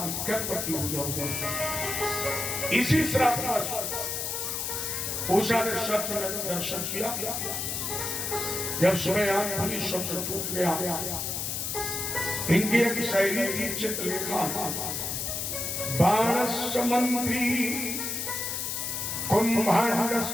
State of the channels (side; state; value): left; noise; hiss, 2 dB below the sound